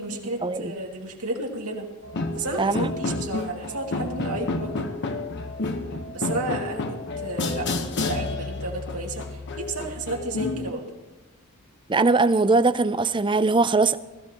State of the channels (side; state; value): both; normal; correlation 0.36